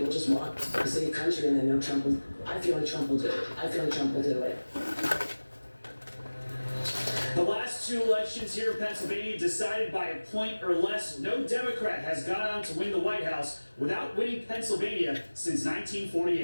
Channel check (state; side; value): inverted; both; correlation -1.00